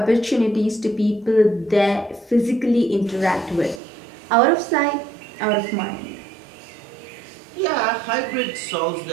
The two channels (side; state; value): left; drops out; at 3.8 s